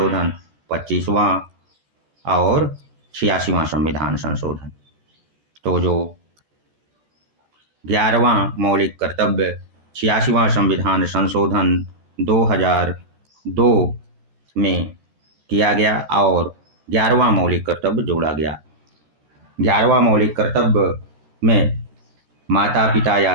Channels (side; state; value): left; late; 14 ms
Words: 25वां और 86वां संविधान संशोधन। तो जो 11वां मौलिक कर्तव्य 86वां संविधान संशोधन 2002 में किया गया और 11वां मौलिक कर्तव्य जोड़ा गया। 11वां मौलिक कर्तव्य में माता पिता या